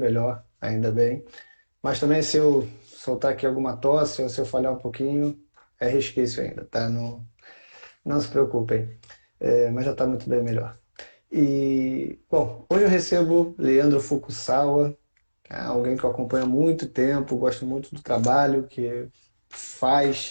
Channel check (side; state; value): both; inverted; correlation -1.00